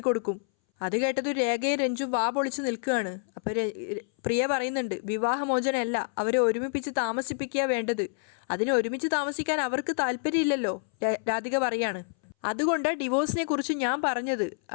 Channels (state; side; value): silent; right; 59 dB below the other